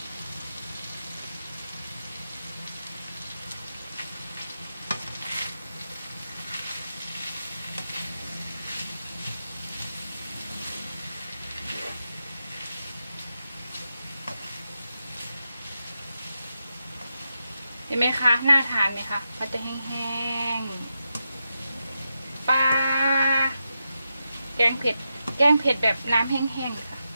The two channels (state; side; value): inverted; both; correlation -0.87